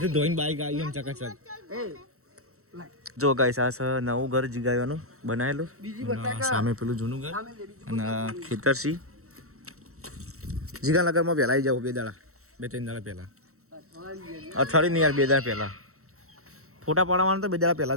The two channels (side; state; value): left; late; 0.64 ms